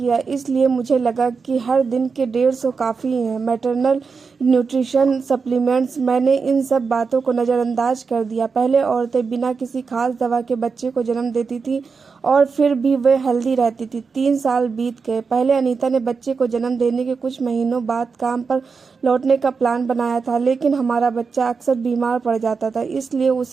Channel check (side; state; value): left; quieter; 5.1 dB